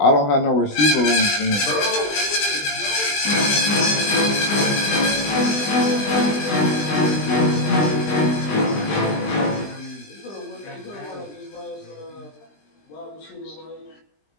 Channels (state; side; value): late; right; 20 ms